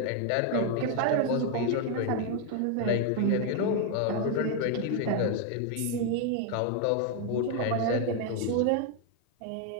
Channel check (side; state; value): both; different; correlation 0.01